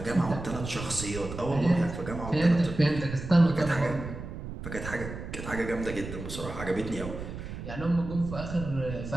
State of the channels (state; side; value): noise; right; rumble, 9 dB below the sound